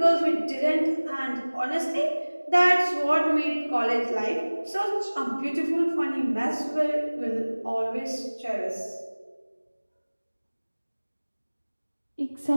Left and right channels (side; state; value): both; inverted; correlation -1.00